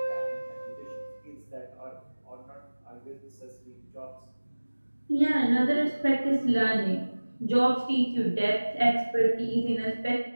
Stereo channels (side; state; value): both; inverted; correlation -1.00